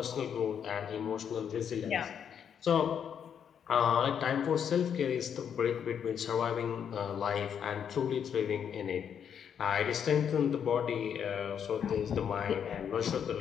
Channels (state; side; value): quieter; right; 8.1 dB